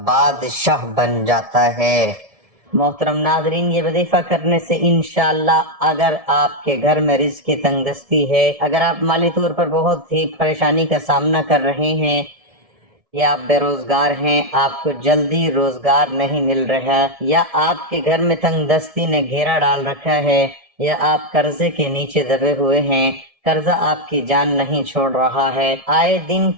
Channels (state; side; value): late; left; 1.7 ms